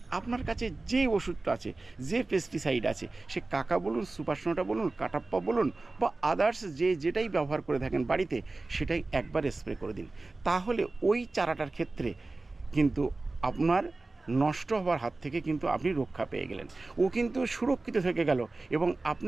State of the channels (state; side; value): quieter; left; 3.3 dB